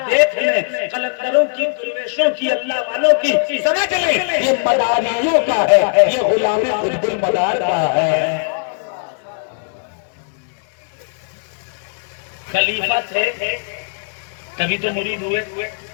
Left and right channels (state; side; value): silent; right; 67 dB below the other